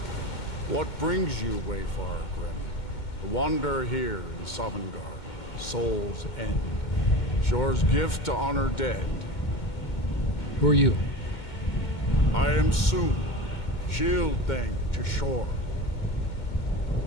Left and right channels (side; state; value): right; late; 2.2 ms